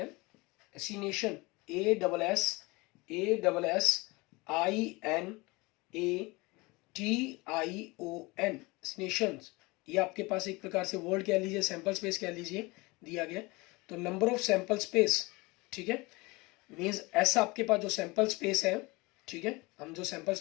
है, एसिनेशन, ASSINATION, नेशंस, ये आपके पास एक प्रकार से वर्ड कह लीजिए, सैंपल स्पेस कह लीजिए, दिया गया। तो नंबर ऑफ सैंपल स्पेस, ठीक है, मीन्स ऐसा आपके पास जो सैंपल स्पेस है, ठीक है, हम जो सैंपल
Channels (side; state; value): right; quieter; 24.1 dB